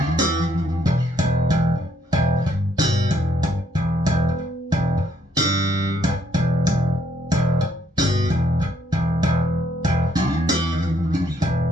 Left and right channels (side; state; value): both; normal; correlation 0.70